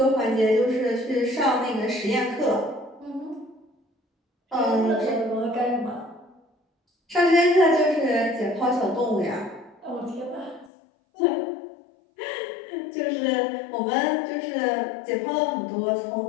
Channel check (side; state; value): right; drops out; at 10.7 s